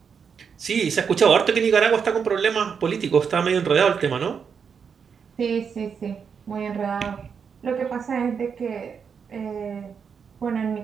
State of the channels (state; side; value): quieter; left; 6.5 dB